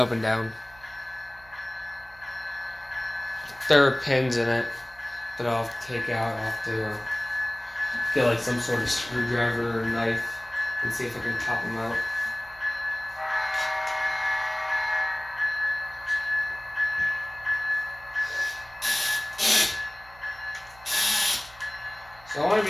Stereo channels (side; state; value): right; noise; hum, 23 dB below the sound